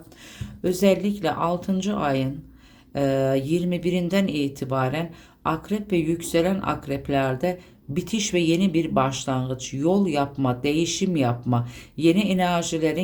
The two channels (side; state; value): both; identical; correlation 1.00